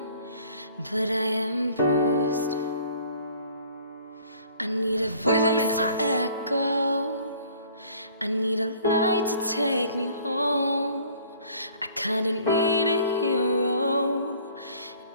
but I am bruised. I need a voice to echo, I need a light to take me home. I kinda need a hero.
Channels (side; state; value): both; inverted; correlation -0.54